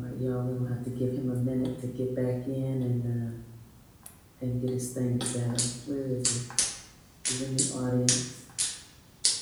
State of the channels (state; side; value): identical; both; correlation 1.00